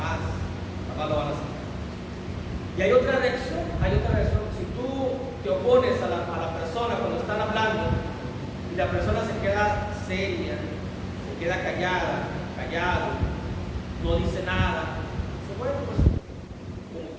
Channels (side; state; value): both; identical; correlation 1.00